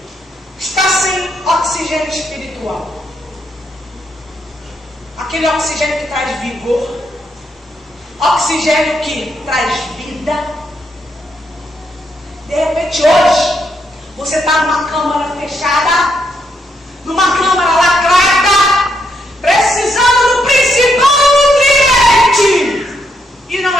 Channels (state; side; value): normal; both; correlation 0.77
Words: está sem oxigênio espiritual. Aquele oxigênio que traz vigor. Oxigênio que traz vida. De repente hoje, você está numa câmara fechada, numa câmara lacrada, precisando do principal nutriente e